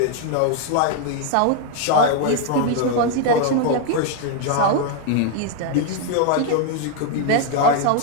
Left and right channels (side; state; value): both; different; correlation 0.00